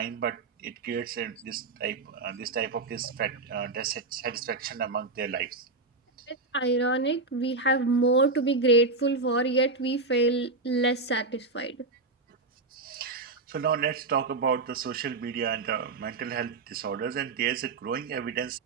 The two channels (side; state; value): left; quieter; 3.6 dB